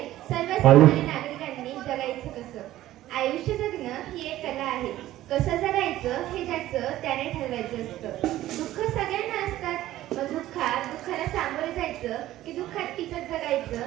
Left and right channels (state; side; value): quieter; left; 14.6 dB